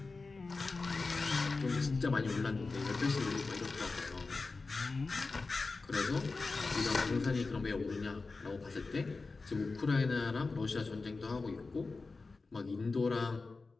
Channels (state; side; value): quieter; right; 3.9 dB